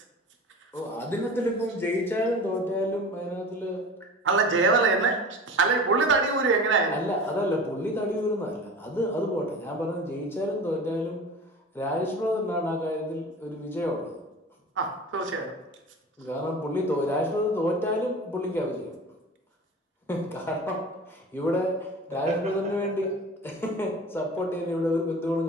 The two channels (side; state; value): both; normal; correlation 0.37